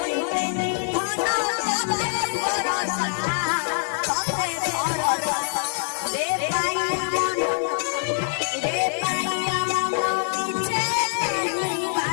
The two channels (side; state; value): right; silent; 60 dB below the other